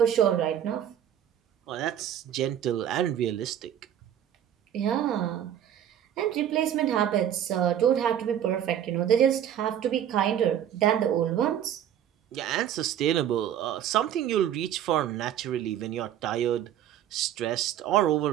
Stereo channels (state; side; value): quieter; left; 10.3 dB